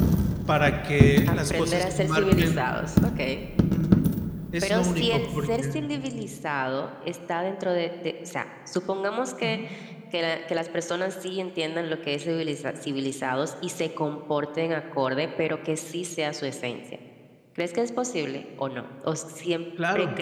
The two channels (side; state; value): both; identical; correlation 1.00